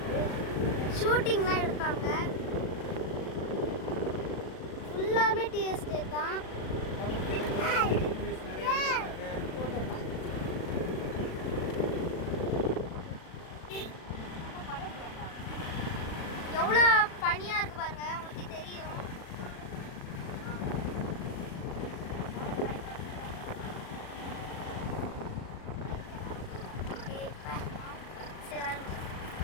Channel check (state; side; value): late; right; 37 ms